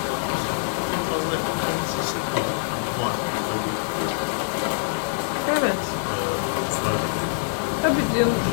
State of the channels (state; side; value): silent; right; 57 dB below the other